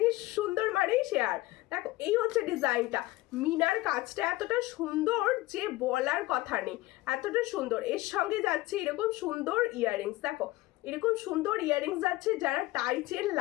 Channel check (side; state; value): right; quieter; 18.6 dB